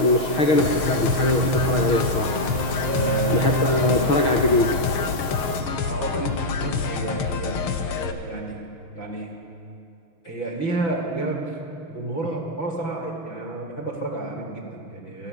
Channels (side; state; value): right; late; 6.8 ms